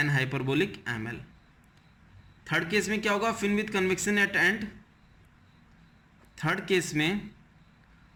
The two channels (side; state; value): both; identical; correlation 1.00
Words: hyperbolic ml। Third case में क्या होगा, fin with convection at end. Third case में